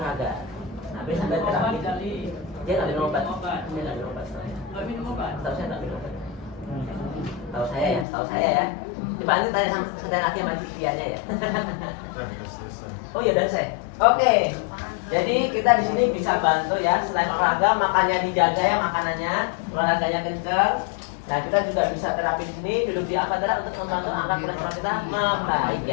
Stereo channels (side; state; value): right; drops out; at 8.1 s